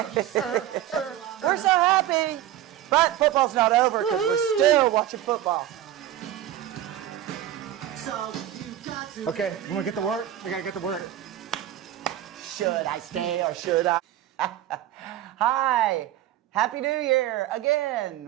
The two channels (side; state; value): left; quieter; 12.2 dB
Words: We're so happy. But football's not over because we're still watching football. so you got to Okay, you want to get to work? We got to get to work. Should I stay or should I? Hi. Happy New Year